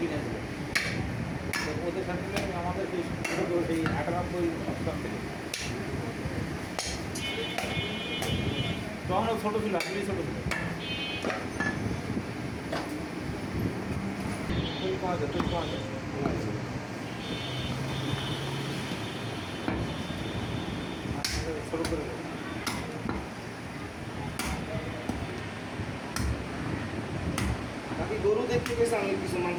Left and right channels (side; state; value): both; identical; correlation 1.00